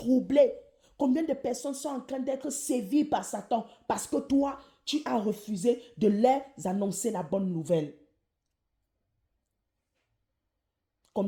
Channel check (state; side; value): identical; both; correlation 1.00